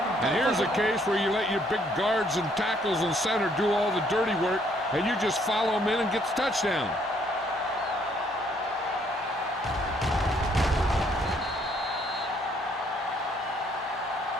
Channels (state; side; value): normal; both; correlation 0.67